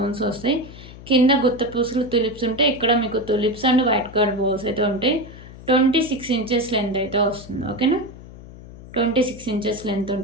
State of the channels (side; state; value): left; noise; hum, 17 dB below the sound